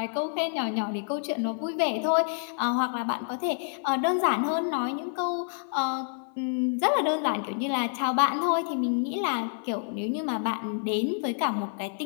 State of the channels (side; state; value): right; silent; 59 dB below the other